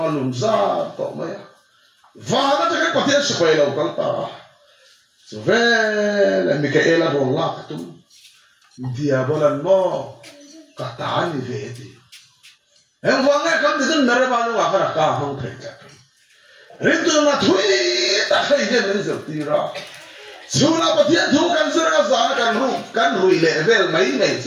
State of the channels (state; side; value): identical; both; correlation 1.00